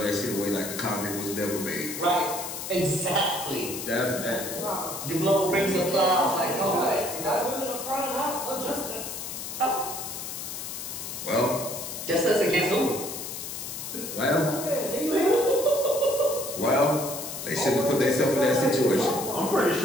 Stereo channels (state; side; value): noise; left; hiss, 7 dB below the sound